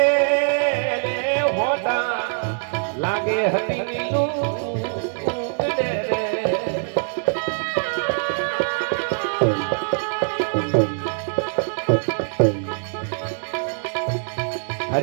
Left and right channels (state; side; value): silent; left; digital silence